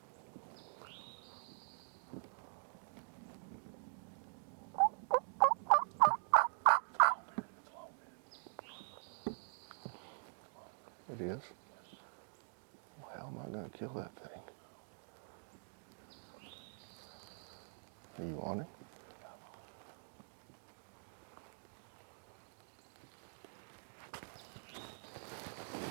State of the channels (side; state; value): left; silent; digital silence